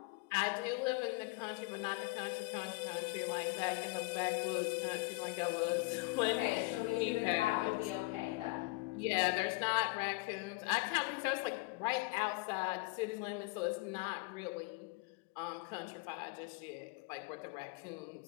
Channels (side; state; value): right; quieter; 25.0 dB